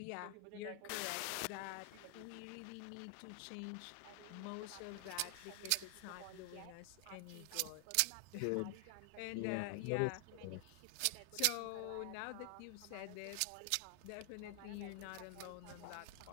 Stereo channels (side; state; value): both; different; correlation 0.00